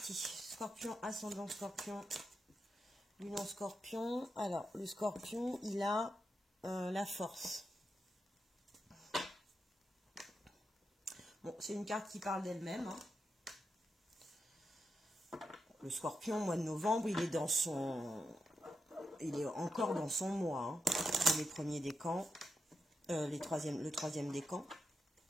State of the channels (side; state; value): both; normal; correlation 0.87